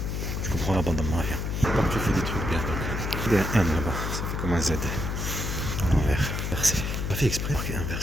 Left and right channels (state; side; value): noise; left; hum, 2 dB below the sound